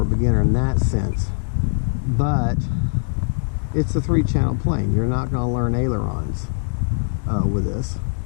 a beginner in that sense, but it's a 3-channel plane. You're not going to learn ailerons with this,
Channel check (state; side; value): silent; right; digital silence